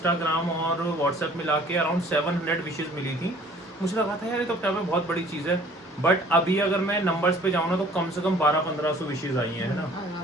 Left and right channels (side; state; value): both; normal; correlation 0.53